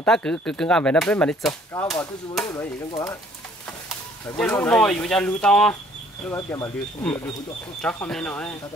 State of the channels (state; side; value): normal; both; correlation 0.59